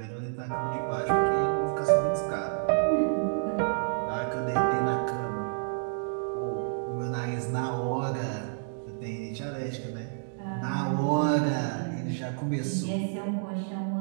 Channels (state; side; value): silent; left; digital silence